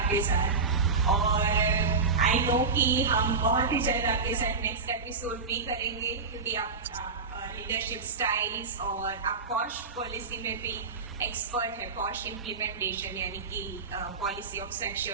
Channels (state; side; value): quieter; left; 4.6 dB